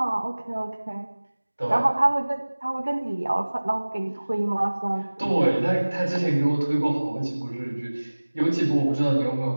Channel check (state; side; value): inverted; both; correlation -1.00